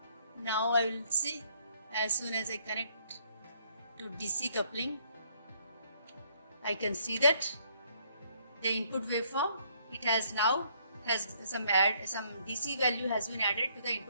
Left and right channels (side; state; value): both; inverted; correlation -0.67